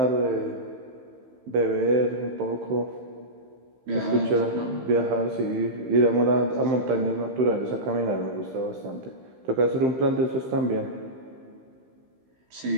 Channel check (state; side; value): late; left; 15 ms